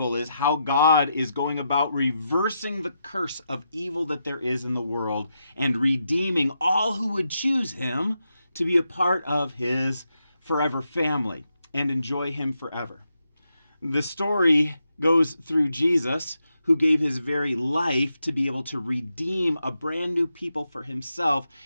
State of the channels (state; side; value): inverted; both; correlation -0.85